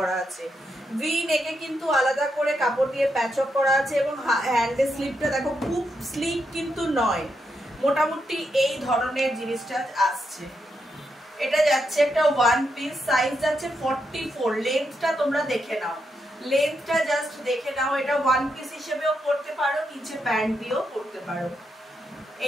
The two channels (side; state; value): both; normal; correlation 0.82